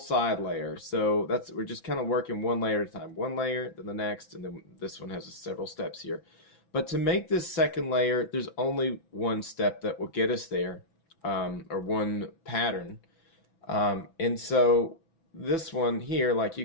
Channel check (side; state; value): right; late; 6.0 ms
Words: layer. So we're just kind of working one layer at a time. One layer, then the next, and then this one has several steps here. But to make this second layer, there's only one step that will get us there, or one pattern. And so this one here, like you